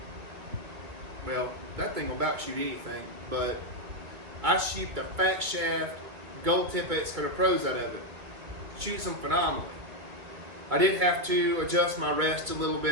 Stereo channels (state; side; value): late; left; 2.6 ms